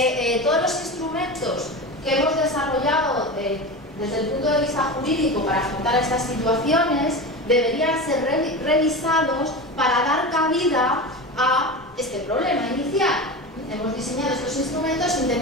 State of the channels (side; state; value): both; normal; correlation 0.26